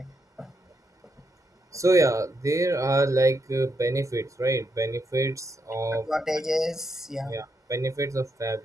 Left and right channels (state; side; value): normal; both; correlation 0.80